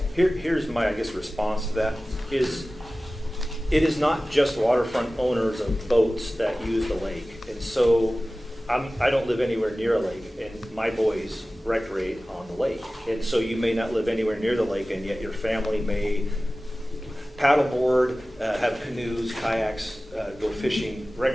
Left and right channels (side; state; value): both; normal; correlation 0.96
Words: Here's my, response to that is, it is not just waterfront owners of boats that use the lake. And so I don't live anywhere near a lake, and my boys recreate on the lake. And so you may not live anywhere near the lake, and yet your family may paddleboard, have canoes, kayaks, go fishing,